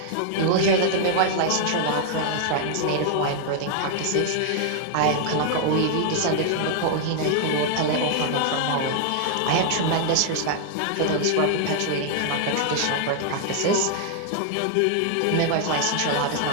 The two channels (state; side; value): different; both; correlation -0.01